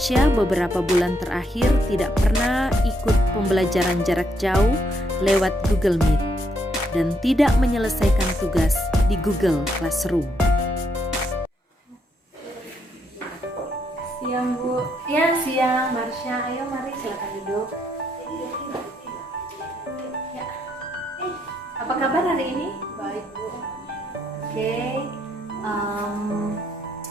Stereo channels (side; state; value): both; normal; correlation 0.75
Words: beberapa bulan terakhir tidak pernah ikut pembelajaran jarak jauh lewat Google Meet dan tidak menyelesaikan tugas di Google Classroom. Siang Bu. Ya, siang Marsha. Ayo mari silakan duduk. Ya. Apa kabar hari ini? Baik Bu. Oke.